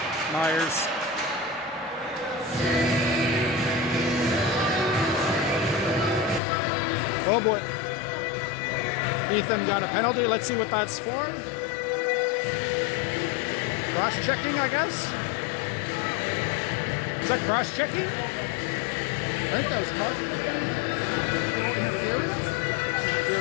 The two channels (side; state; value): right; drops out; at 6.4 s